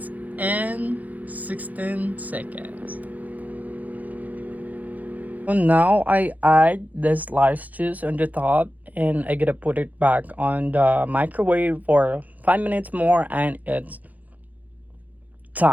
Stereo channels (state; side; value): late; left; 0.079 ms